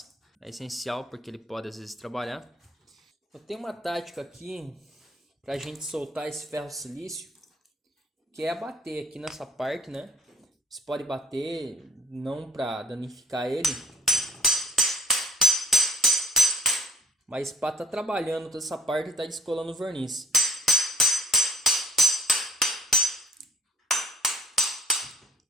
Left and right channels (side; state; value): both; normal; correlation 0.57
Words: É essencial porque ele pode às vezes trabalhar. Eu tenho uma tática aqui para a gente soltar esse ferro silício, que é bater aqui nessa parte, né? Você pode bater não para danificar ele, mas para estar trabalhando toda essa parte e tá descolando o verniz.